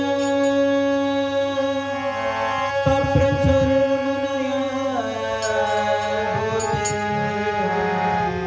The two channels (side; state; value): both; identical; correlation 1.00